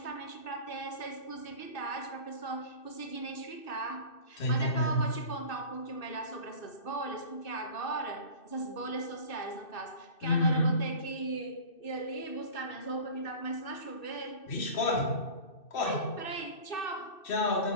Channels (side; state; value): right; late; 2.6 ms